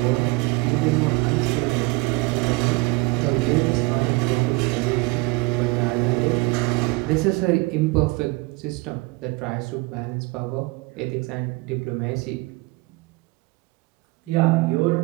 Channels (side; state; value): left; quieter; 24.5 dB